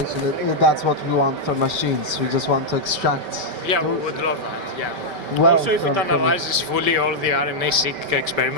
that's what we want from machines. We just want to extract. Yeah, we would love that, yeah. Well, also, if it analyzes fully all the RNA-seq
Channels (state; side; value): late; left; 5.2 ms